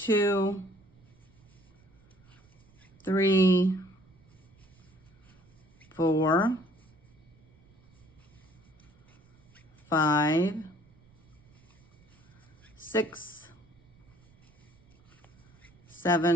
3, 4, 5, 6,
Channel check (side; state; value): right; noise; rumble, 29 dB below the sound